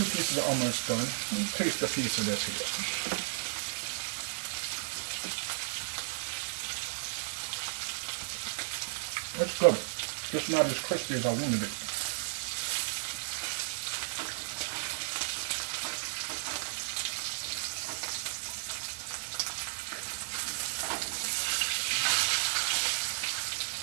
pieces are almost done. Let me taste a piece of this here. That's good. Just not as crispy as I wanted it.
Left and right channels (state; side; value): silent; left; digital silence